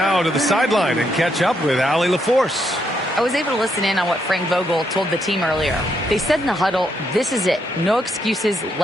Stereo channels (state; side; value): normal; both; correlation 0.77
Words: to the sideline and catch up with Allie LaForce. I was able to listen in on what Frank Vogel told the team earlier. They said in the huddle, this is it. No excuses.